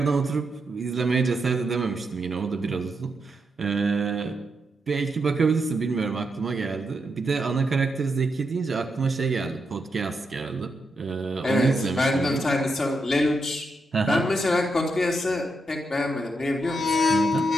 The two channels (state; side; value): normal; both; correlation 0.83